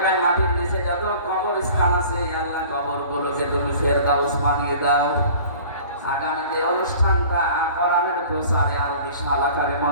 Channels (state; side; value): inverted; both; correlation -0.46